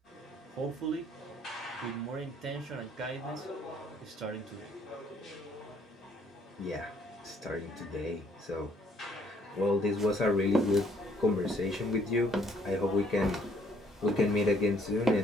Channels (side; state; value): both; normal; correlation 0.65